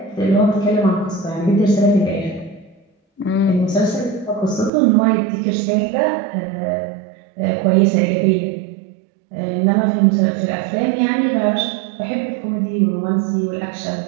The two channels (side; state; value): left; drops out; at 4.7 s